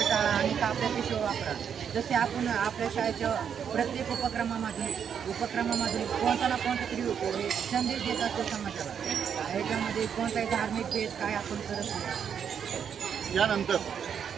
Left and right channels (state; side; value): quieter; left; 7.8 dB